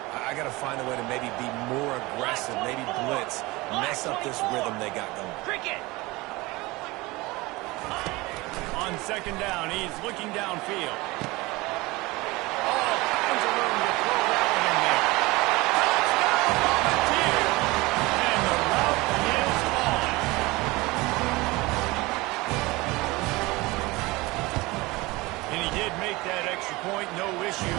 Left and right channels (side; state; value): left; quieter; 22.1 dB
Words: I got to find a way to maybe be more aggressive, maybe blitz, mess up this rhythm they got going. Cricket. On second down, he's looking downfield. All kinds of room to throw that one in there. Touchdown, Volunteer! And the route is on. And he did make that extra point, no issue